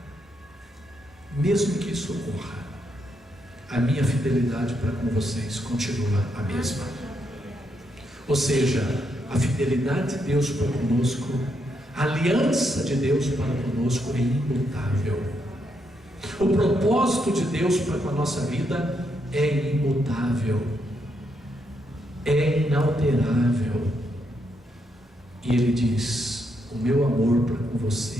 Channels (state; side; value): normal; both; correlation 0.79